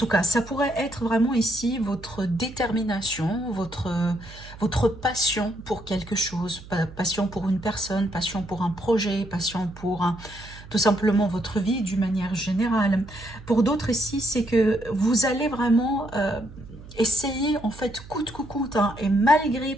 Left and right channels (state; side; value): noise; right; hum, 17 dB below the sound